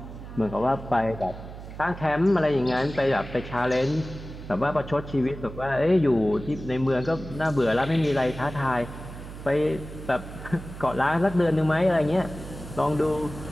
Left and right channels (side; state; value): right; noise; hum, 12 dB below the sound